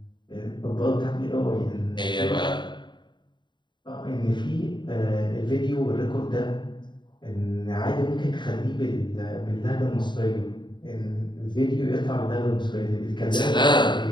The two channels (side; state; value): right; late; 0.22 ms